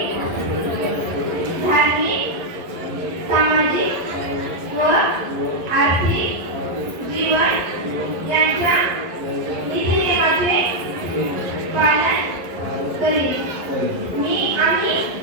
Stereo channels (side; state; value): left; late; 11 ms